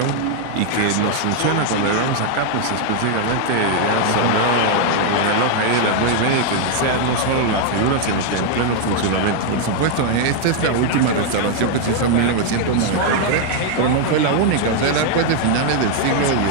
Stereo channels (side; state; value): both; different; correlation 0.00